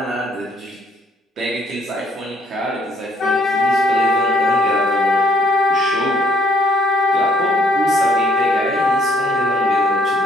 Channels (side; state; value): both; normal; correlation 0.65